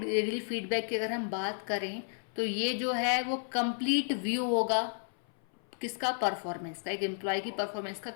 फीडबैक की अगर हम बात करें तो ये जो है वो कंप्लीट व्यू होगा किसका, परफॉर्मेंस का, एक एम्प्लॉय की परफॉर्मेंस का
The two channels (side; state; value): right; silent; 56 dB below the other